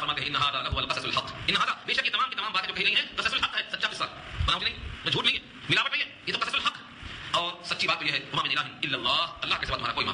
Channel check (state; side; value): identical; both; correlation 1.00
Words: ہیں ان ھذا لہو القصص الحق, ان ھذا, بے شک یہ تمام کی تمام باتیں جو کہی گئی ہیں قصص الحق ہے, سچا قصہ, بناوٹی نہیں, جھوٹ نہیں ہے, ملاوٹ نہیں ہے, یہ تو قصص الحق ہے. اور سچی بات تو یہ ہے وما من الہ الا اللہ, اللہ کے سوا تمہارا کوئی